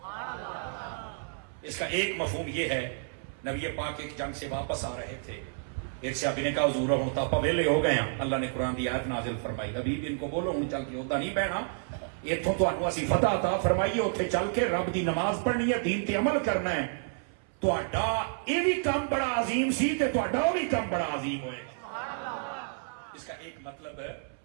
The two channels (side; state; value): left; silent; 58 dB below the other